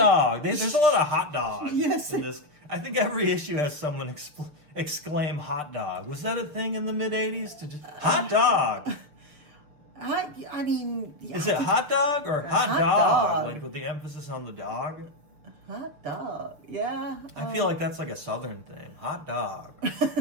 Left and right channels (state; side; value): late; left; 6.7 ms